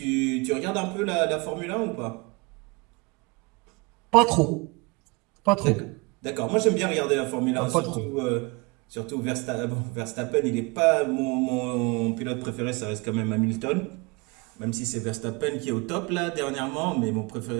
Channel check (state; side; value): quieter; left; 27.4 dB